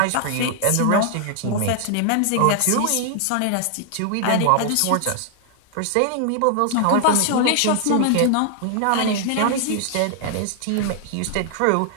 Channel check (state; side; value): different; both; correlation 0.00